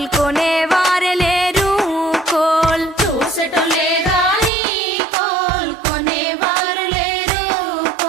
కొనేవారే లేరు కోల్ చూసటోలే గాని కోల్ కొనేవారు లేరు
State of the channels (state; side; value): drops out; left; at 4.5 s